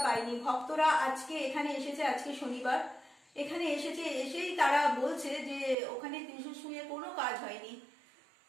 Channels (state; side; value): drops out; left; at 5.8 s